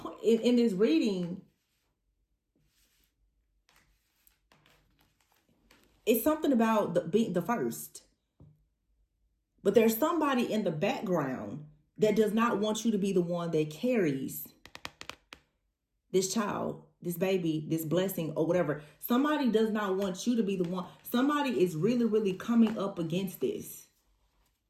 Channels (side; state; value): both; identical; correlation 1.00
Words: in this reading, it's something about being the first. But there's somebody in the background that does not want you to be the one that carries this child, this baby, this blessing, or whatever. Somebody does not want you to be the one. Somebody is really, really coming up against this